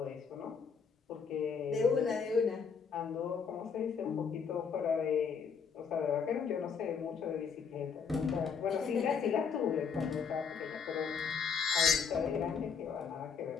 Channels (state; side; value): quieter; right; 6.1 dB